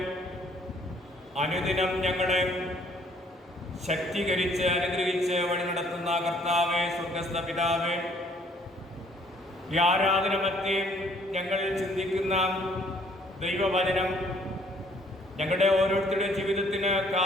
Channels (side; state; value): both; normal; correlation 0.62